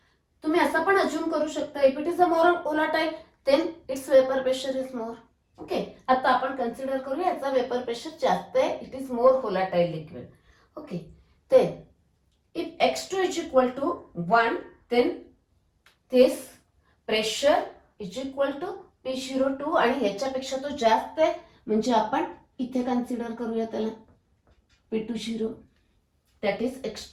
तुम्ही असं पण assume करू शकता if it is a more volatile, then its vapor pressure is more. Okay, आता आपण consider करूया याचा vapour pressure जास्त आहे, it is more volatile liquid. Okay, then if X2 is equal to 1, then this pressure is equal to P02 आणि याच्यापेक्षा तो जास्त आहे म्हणजे आपण इथे कन्सिडर करूया त्याला P20. That is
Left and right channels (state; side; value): identical; both; correlation 1.00